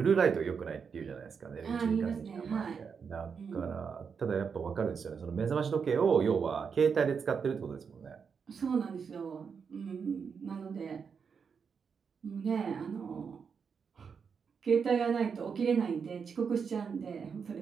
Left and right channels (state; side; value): quieter; left; 6.2 dB